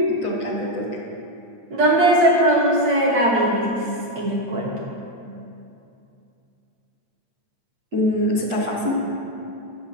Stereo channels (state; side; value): late; left; 8.7 ms